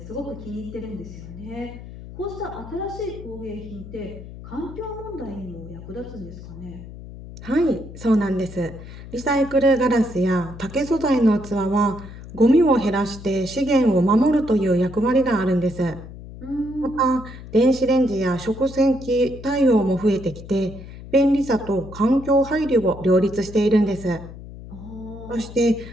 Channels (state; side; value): noise; left; hum, 14 dB below the sound